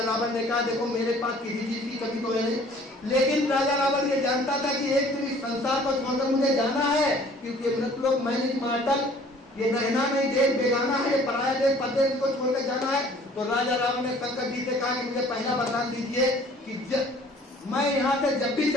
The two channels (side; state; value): both; normal; correlation 0.53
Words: रावण ने कहा देखो मेरे पास किसी चीज की कमी तो है नहीं, लेकिन राजा रावण ये जानता था कि एक दिन इस संसार को छोड़कर मुझे जाना है, क्योंकि मृतलोक मैनिक मार्टल, ये नहना नहीं देश बेगाना है, ये पराया देश परदेश को छोड़कर जाना है। तो राजा रावण ने शंकर जी से कहा कि मुझे पहला वरदान दीजिए कि मैं यहाँ से जब भी